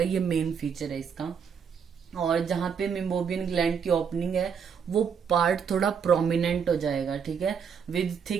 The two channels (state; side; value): quieter; left; 6.8 dB